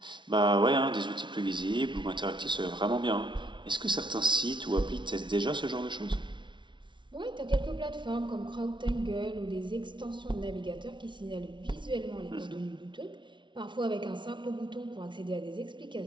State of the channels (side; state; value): left; late; 0.24 ms